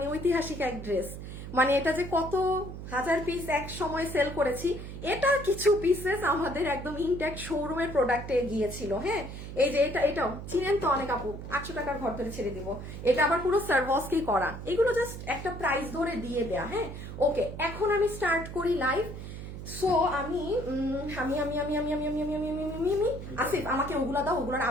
ঐতিহাসিক এক ড্রেস, মানে এটা যে কত হাজার পিস এক সময় সেল করেছি, এটা কিছু পিসেস আমাদের একদম ইনট্যাক্ট শোরুমের প্রোডাক্টে গিয়েছিল। হ্যাঁ, এই যে এটাও চিনেন তো অনেক আপু, 800 টাকার ঘর ধরে ছেড়ে দিব। এটা আবার পুরো সার্ভাসকেই করা, এগুলো জাস্ট একটা প্রাইস ধরে দিয়ে দেয়া। হ্যাঁ, ওকে, এখন আমি স্টার্ট করি লাইভ। সো আমি আসিফ আমাকে ওগুলা দাও, ওগুলোর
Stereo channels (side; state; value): right; noise; hum, 9 dB below the sound